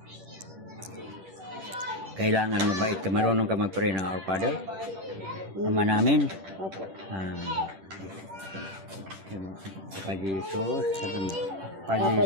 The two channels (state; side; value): late; left; 10 ms